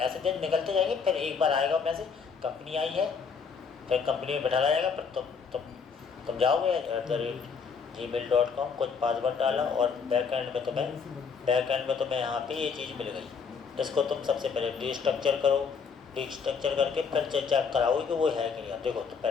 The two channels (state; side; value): quieter; right; 5.8 dB